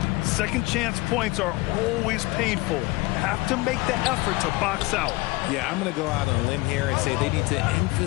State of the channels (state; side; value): quieter; right; 21.9 dB